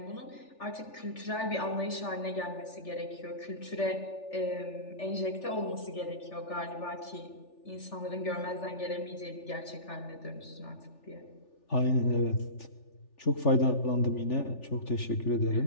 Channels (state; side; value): late; right; 3.4 ms